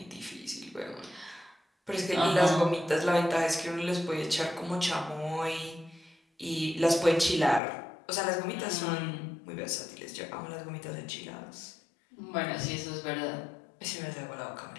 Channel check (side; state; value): right; drops out; at 7.6 s